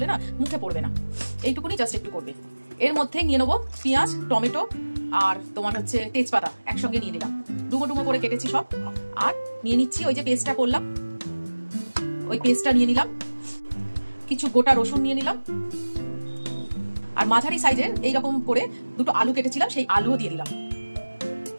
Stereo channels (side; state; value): both; inverted; correlation -1.00